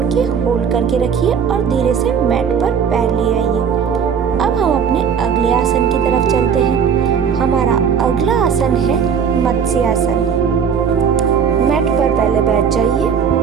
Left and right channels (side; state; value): left; quieter; 7.0 dB